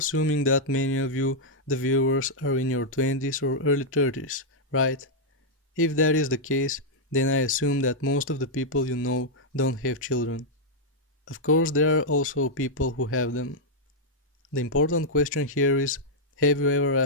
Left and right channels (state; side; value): normal; both; correlation -0.05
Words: that many of you, the viewers, are in your 20s or early 30s, right? If that is the case, then I assume that most of the people you know don't have children. Of course, there are also people who have them. The important question here is, have you ever